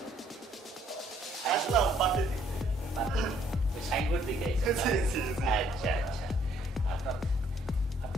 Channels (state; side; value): normal; both; correlation 0.65